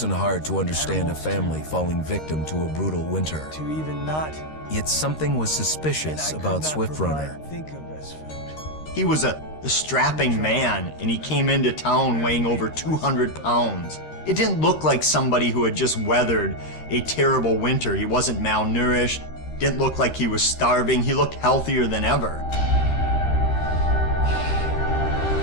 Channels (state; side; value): late; right; 13 ms